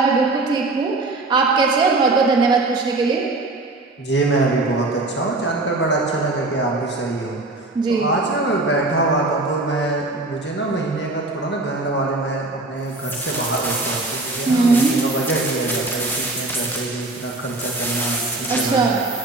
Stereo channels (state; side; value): quieter; left; 3.1 dB